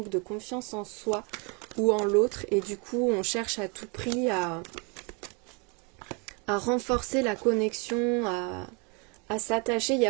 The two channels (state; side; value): quieter; left; 32.9 dB